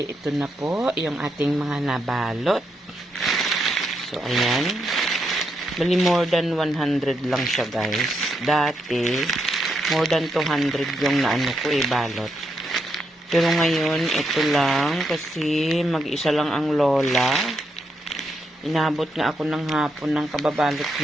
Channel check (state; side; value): normal; both; correlation 0.80